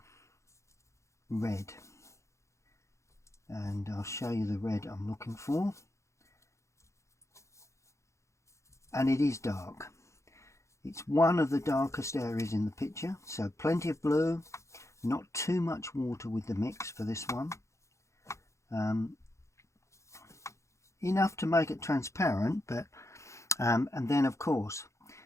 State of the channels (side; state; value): right; late; 0.14 ms